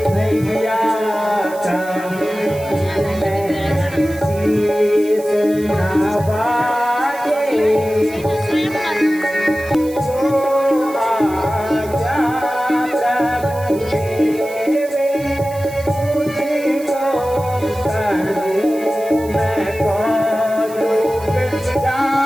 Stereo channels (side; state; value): right; noise; hiss, 19 dB below the sound